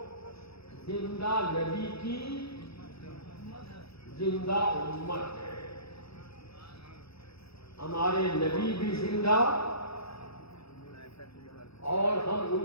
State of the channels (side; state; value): right; late; 0.77 ms